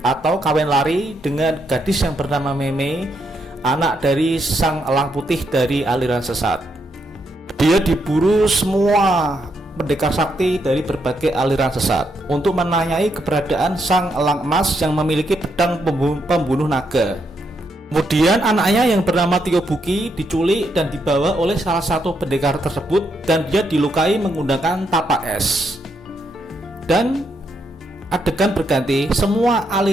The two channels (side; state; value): both; normal; correlation 0.78